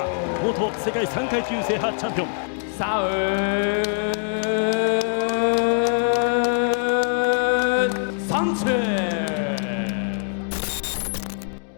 元世界3階級制覇チャンピオンサウン・サンチェス。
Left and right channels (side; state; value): right; silent; digital silence